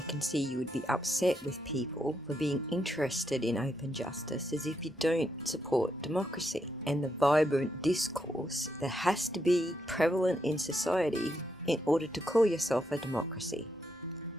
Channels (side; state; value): both; normal; correlation 0.80